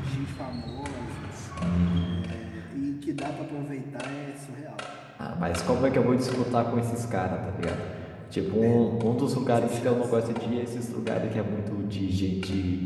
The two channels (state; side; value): identical; both; correlation 1.00